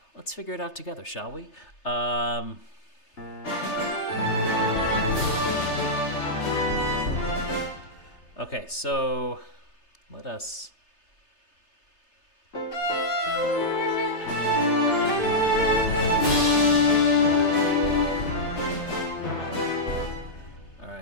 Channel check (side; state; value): right; late; 3.3 ms